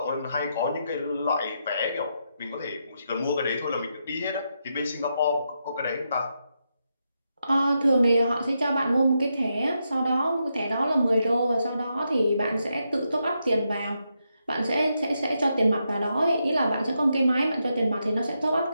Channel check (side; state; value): both; inverted; correlation -0.83